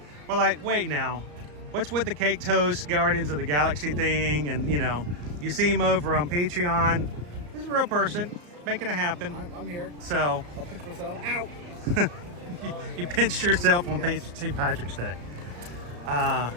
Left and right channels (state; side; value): late; left; 34 ms